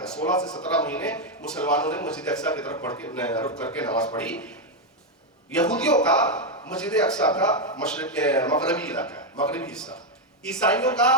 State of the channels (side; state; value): both; normal; correlation 0.04